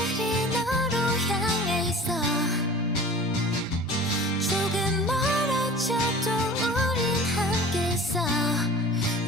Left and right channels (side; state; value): both; normal; correlation 0.41